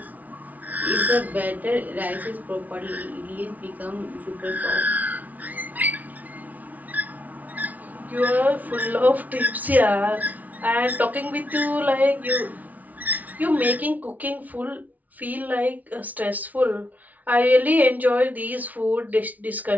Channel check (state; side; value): late; left; 0.075 ms